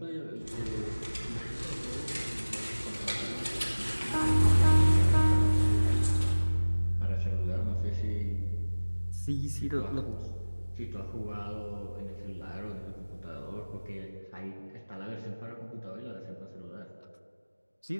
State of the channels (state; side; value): inverted; both; correlation -1.00